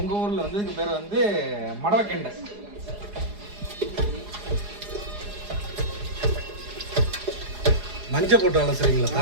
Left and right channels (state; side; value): late; left; 4.8 ms